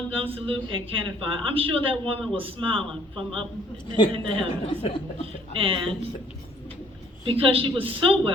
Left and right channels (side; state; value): both; normal; correlation 0.60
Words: gun salute, and cannon fire. I'm sure that woman was smiling from up in the heavens. And because she was so